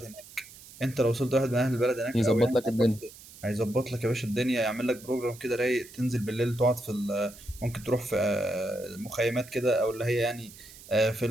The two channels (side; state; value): right; noise; hiss, 19 dB below the sound